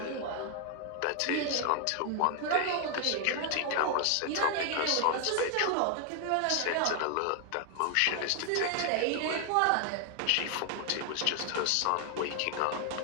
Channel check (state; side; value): different; both; correlation 0.00